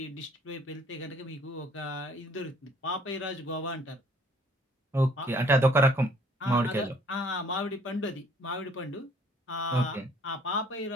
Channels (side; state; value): both; normal; correlation 0.59